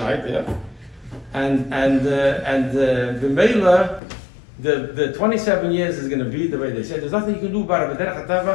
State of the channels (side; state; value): right; drops out; at 4.0 s